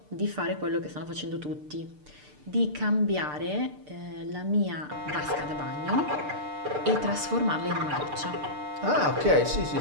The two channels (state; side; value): late; left; 6.7 ms